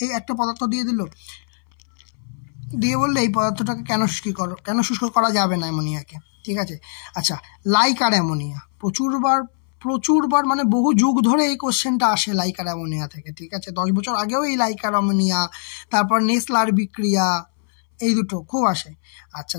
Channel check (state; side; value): silent; right; 64 dB below the other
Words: এই একটা পদার্থ দিয়ে দিল, দিয়ে বললে এই পদার্থটাকে কেন শুষ্ক করা যাবে না অ্যামোনিয়াকে, ঠিক আছে। আচ্ছা, লাইক আর অ্যামোনিয়া প্রচুরবার মানে বহু যুগ ধরে এই কোশ্চেনটা আসে লাইক আর অ্যামোনিয়া থেকে, ঠিক আছে। 10 বছর আগেও এই লাইক আর অ্যামোনিয়া, তারপর নেসলার বিক্রিয়া, এই দুটো খুব আসে। আচ্ছা,